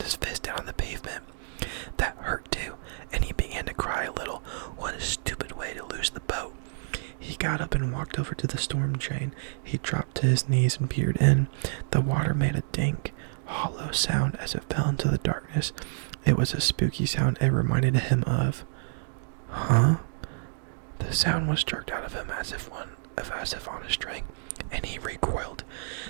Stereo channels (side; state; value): left; silent; digital silence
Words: his fist down on the pavement. That hurt too, and he began to cry a little. What a stupid way to lose the boat. He got up and walked over to the storm drain. He dropped to his knees and peered in. The water made a dank, hollow sound as it fell into the darkness. It was a spooky sound it reminded him of. Huh? The sound was jerked out of him as if on a string, and he recoiled.